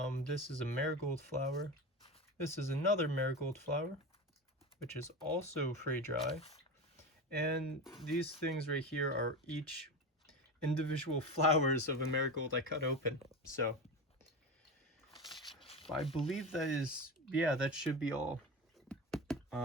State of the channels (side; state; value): both; normal; correlation 0.24